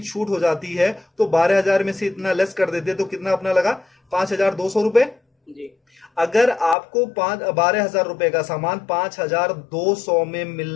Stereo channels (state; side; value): drops out; right; at 6.8 s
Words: छूट हो जाती है, तो 12,000 में से इतना लेस कर देते तो कितना अपना लगा? 5,200 रुपए। अगर आपको 12,000 रुपए का सामान 5,200 में